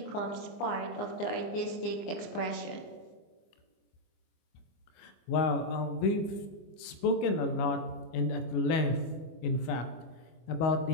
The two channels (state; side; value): late; right; 25 ms